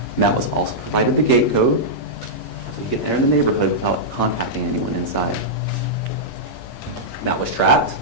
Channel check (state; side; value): normal; both; correlation -0.10